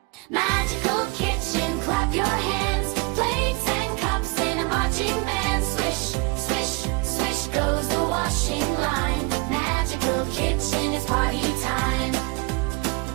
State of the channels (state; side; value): quieter; left; 26.8 dB